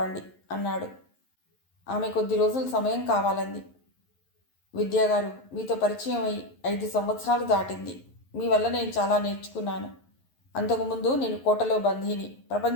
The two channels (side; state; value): right; late; 11 ms